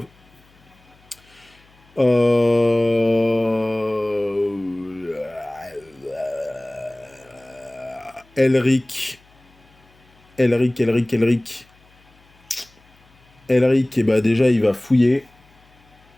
Elric. Elric, et bah déjà, il va fouiller.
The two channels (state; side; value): noise; left; hum, 30 dB below the sound